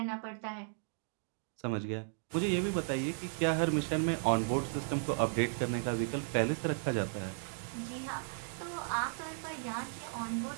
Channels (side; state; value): left; silent; digital silence